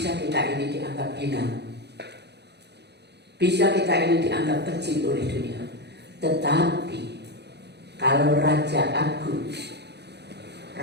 kita ini dianggap hina, bisa kita ini dianggap kecil oleh dunia. Tetapi kalau Raja Agung,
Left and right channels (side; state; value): left; late; 0.49 ms